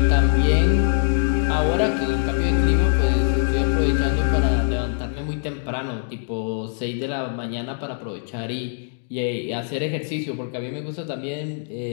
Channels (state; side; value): silent; right; digital silence